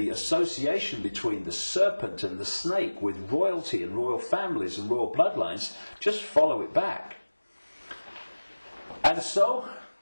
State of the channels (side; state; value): both; inverted; correlation -1.00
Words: association between the serpent and the snake with royalty and royal families and royal bloodlines, just follow it back. And so